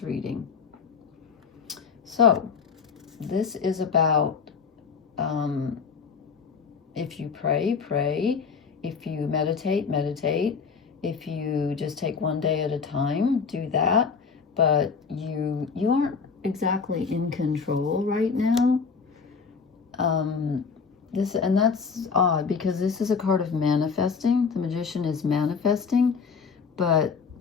reading. So this is about if you pray, pray. If you meditate, meditate. If you just take one day at a time, do that. But you aren't exactly in control right now. And that's odd because this is a card of manifesting. The Magician is manifesting, but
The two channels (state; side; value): quieter; right; 5.6 dB